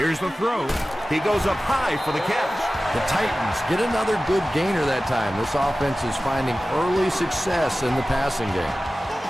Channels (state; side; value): normal; both; correlation 0.96